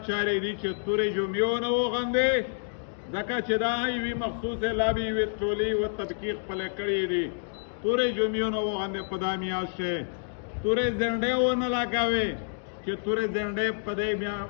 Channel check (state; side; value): silent; right; digital silence